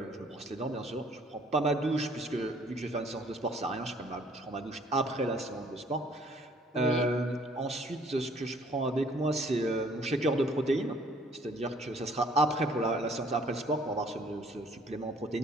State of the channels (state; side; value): normal; both; correlation 0.59